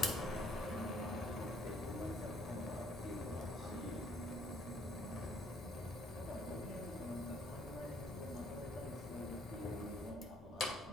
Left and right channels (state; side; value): normal; both; correlation 0.63